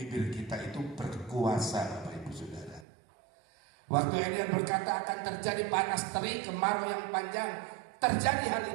kita itu berkuasa, Bapak Ibu Saudara. Waktu Elia berkata akan terjadi panas terik, kemarau yang panjang, terjadi hal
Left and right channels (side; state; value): left; drops out; at 2.9 s